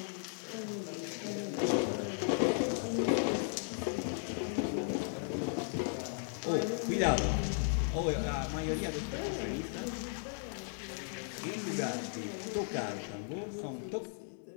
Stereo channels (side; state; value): right; silent; 54 dB below the other